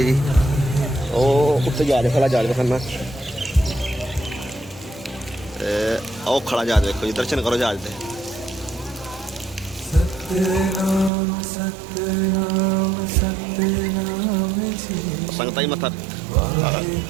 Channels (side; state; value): left; drops out; at 11.1 s